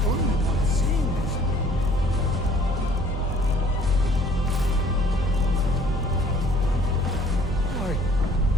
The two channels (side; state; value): both; normal; correlation 0.56